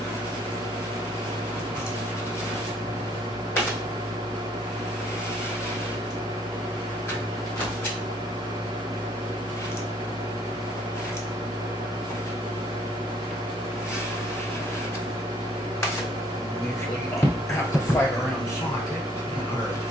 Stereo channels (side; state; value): both; normal; correlation 0.63